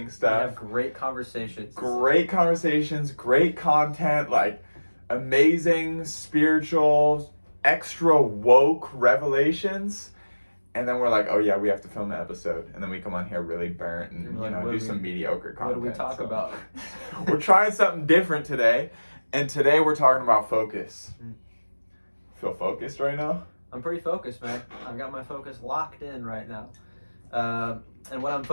stuff. We have great conversations. Great conversations, great content, like amazing, spiritual, extra woke revelations. And then we're like, oh yeah, we have to film an episode. And then we come on here really burnt and, do some mediocre content. What do we talk about? We're trying something different today. And today we're talking about focus. Feel focused right now? I'm pretty focused, man. I've got my focus locked in right now. And what I'm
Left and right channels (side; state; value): both; inverted; correlation -1.00